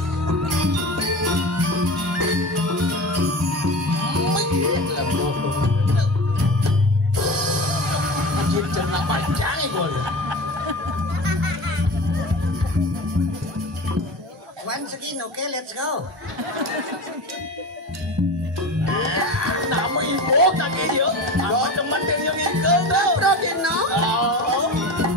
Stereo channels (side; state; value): both; normal; correlation 0.30